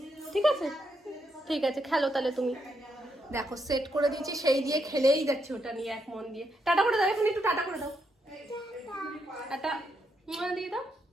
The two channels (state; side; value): normal; both; correlation 0.79